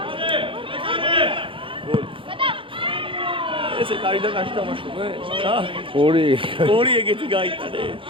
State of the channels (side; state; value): left; late; 0.25 ms